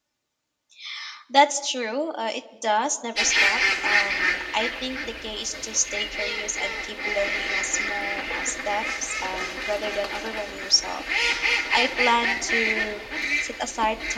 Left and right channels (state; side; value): identical; both; correlation 1.00